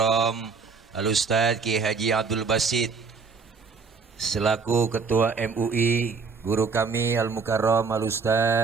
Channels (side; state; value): left; quieter; 5.0 dB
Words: Al-Ustadz Ki Haji Abdul Basit selaku Ketua MUI, guru kami Al-Mukarram